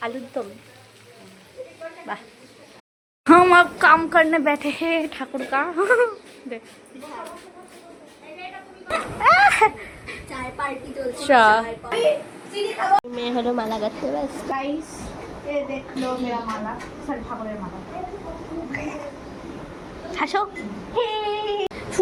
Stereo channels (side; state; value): both; identical; correlation 1.00